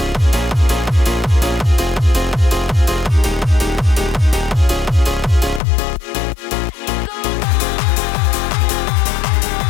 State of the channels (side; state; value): right; drops out; at 5.6 s